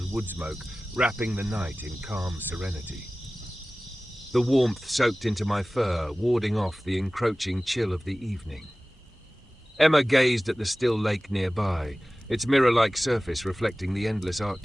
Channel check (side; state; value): both; normal; correlation 0.97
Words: wood smoke, wrapping the night in calm serenity. The warmth soaked into my fur, warding off the encroaching chill of the evening. Emma gazed at the still lake nearby, its mirror-like surface reflecting the endless